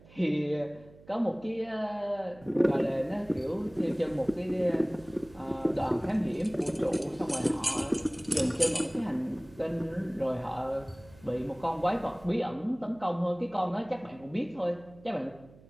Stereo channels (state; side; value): noise; right; hum, 23 dB below the sound